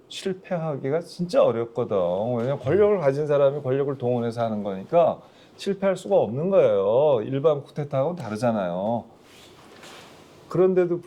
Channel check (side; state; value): both; identical; correlation 1.00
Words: 실패하기가 진짜 어렵거든. 왜냐면 권력을 가진 사람이 권력을 동원해서 하는 거니까 실패할 수가 없는 거예요. 일반 쿠데타하고는 다르잖아요. 그런데도